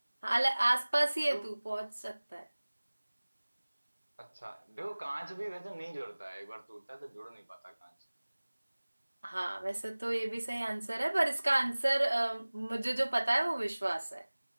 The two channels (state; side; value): inverted; both; correlation -1.00